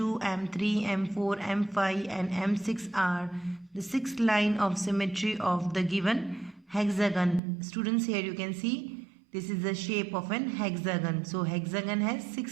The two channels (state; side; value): drops out; left; at 7.4 s